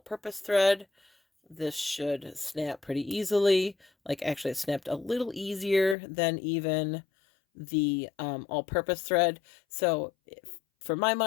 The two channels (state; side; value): drops out; right; at 6.0 s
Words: thread. This should snap pretty easily. Like, actually, it snapped a little easier than even the all-purpose thread. So for my